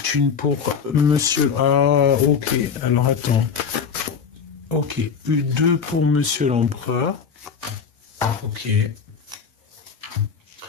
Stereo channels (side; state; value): right; quieter; 6.4 dB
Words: une pour monsieur... Ah, ok. Alors, attends. Ok. Deux pour monsieur l'empereur. Ok. Il